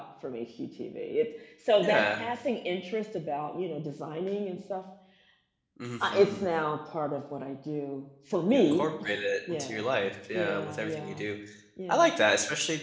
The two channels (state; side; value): identical; both; correlation 1.00